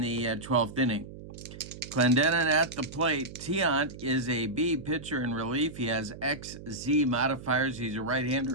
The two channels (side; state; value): right; noise; hum, 14 dB below the sound